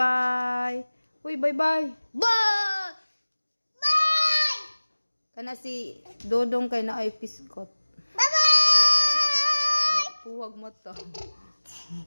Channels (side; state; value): both; inverted; correlation -1.00